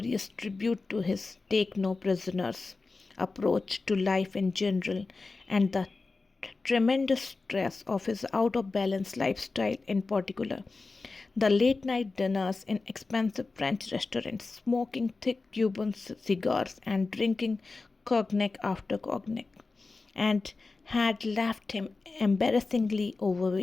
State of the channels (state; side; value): quieter; right; 3.8 dB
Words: tribute to his take no prisoners approach to life in general, and the tremendous stress of his out of balance lifestyle in particular. The late night dinners in expensive French restaurants, smoking thick Cuban cigars and drinking cognac after cognac, and had left him embarrassingly